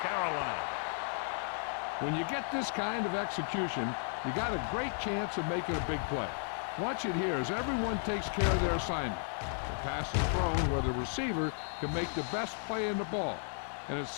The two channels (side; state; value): right; silent; 55 dB below the other